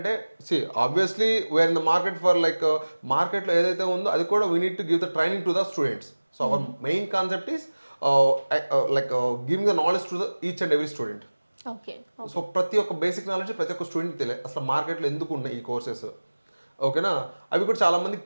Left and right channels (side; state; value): both; inverted; correlation -1.00